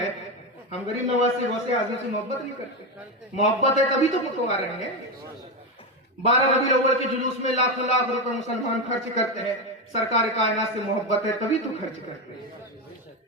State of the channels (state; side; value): normal; both; correlation 0.13